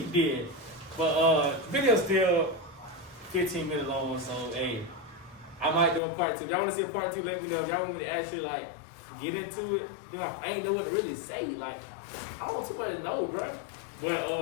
did. But video's still 15 minutes long, so hey, I might do a part 2. If y'all want to see a part 2, let me know. If y'all want me to actually like get into it, you know, I ain't know what to really say. Like, I don't want too much to know, bro.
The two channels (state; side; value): drops out; right; at 6.0 s